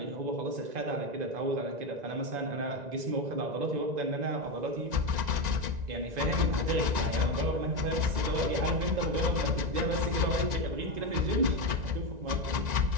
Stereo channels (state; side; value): late; left; 1.9 ms